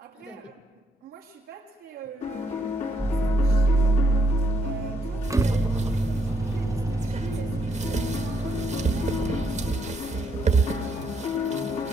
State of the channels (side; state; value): both; normal; correlation 0.74